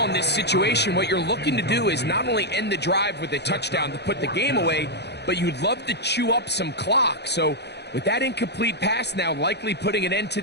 in this situation, what you're looking to do is not only end the drive with a touchdown to put the game away, but you'd love to chew up some clock. So with that incomplete pass now likely putting an end to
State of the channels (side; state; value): right; late; 0.49 ms